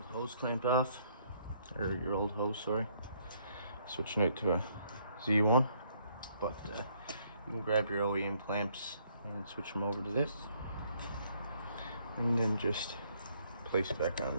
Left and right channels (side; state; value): both; inverted; correlation -0.67